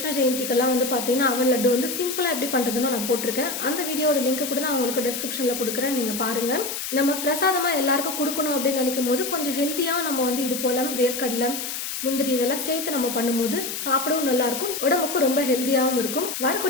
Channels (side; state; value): left; noise; hiss, 5 dB below the sound